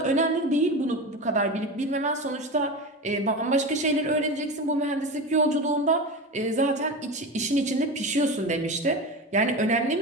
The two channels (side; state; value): both; normal; correlation 0.25